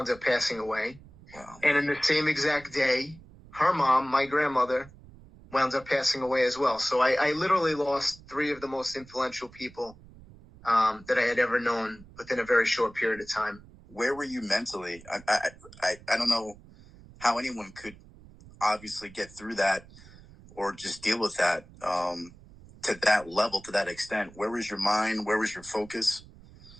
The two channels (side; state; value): right; noise; rumble, 22 dB below the sound